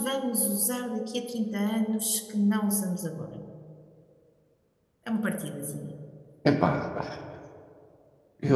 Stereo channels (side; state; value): both; identical; correlation 1.00